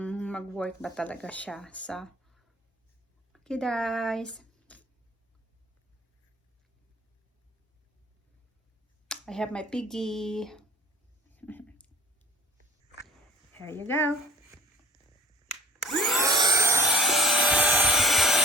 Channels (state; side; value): normal; both; correlation 0.47